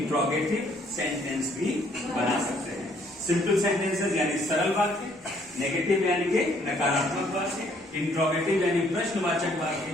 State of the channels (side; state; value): both; normal; correlation 0.64